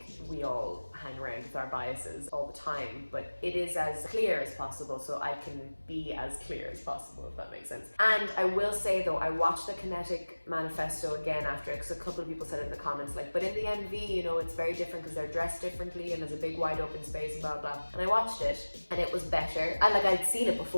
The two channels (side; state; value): both; inverted; correlation -1.00